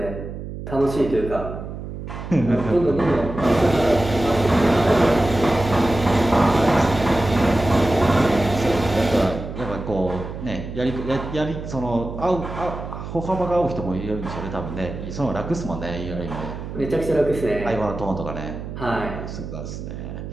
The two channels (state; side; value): noise; right; hum, 9 dB below the sound